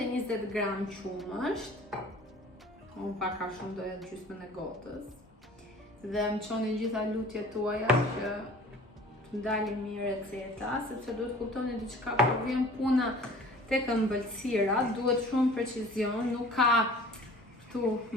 gram qumësht. Unë pak a shumë doja gjysmën e gotës. Dhe më qoni gjitha lutjet tuaja që të ndalin mirë receta, sepse duhet kuptoni diçka, kur vjen puna tek ëmbëlsira, duhet shumë precizion, nuk ka këtu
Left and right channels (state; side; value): normal; both; correlation 0.47